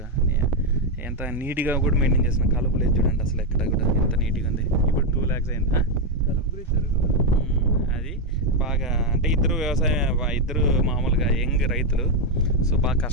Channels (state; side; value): normal; both; correlation 0.04